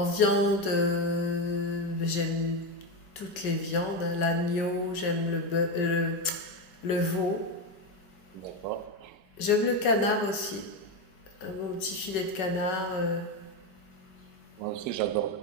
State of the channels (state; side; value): late; right; 5.3 ms